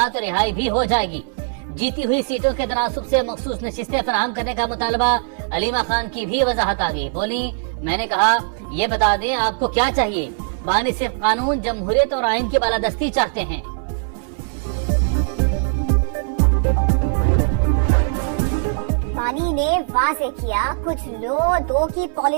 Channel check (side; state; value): left; silent; 65 dB below the other